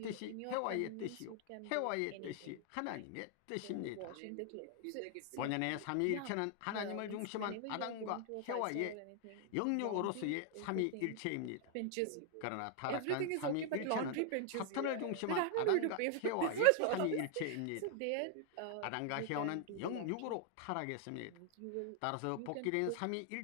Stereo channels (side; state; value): both; different; correlation 0.00